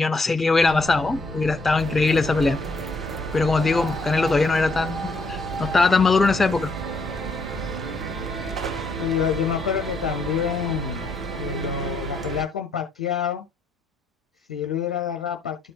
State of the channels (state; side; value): quieter; right; 3.0 dB